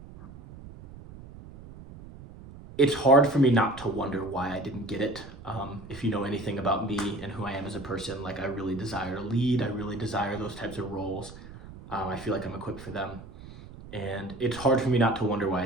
it's hard for me not to wonder why I didn't get it. If you know anything about me and who I am as a person, like I really desire to lead. I really desire those types of roles. I feel like I'm equipped for them. And it's hard for me not to wonder why I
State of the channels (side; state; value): right; noise; rumble, 16 dB below the sound